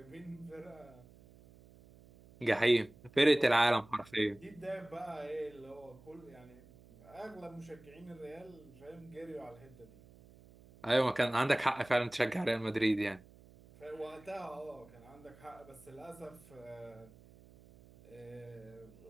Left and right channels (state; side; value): noise; right; hum, 23 dB below the sound